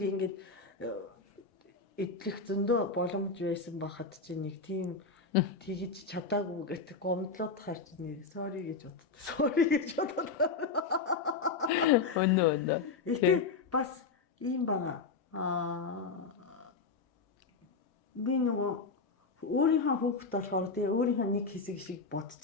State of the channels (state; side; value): quieter; right; 4.5 dB